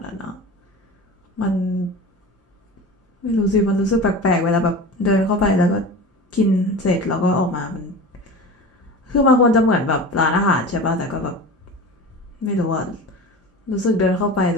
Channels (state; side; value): normal; both; correlation 0.33